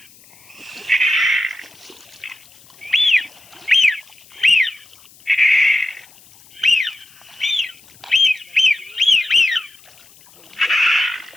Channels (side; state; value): left; noise; hiss, 26 dB below the sound